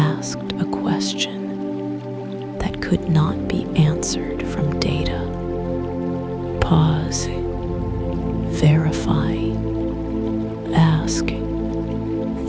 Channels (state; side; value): identical; both; correlation 1.00